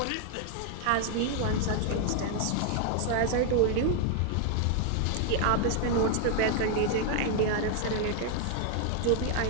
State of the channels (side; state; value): both; different; correlation 0.00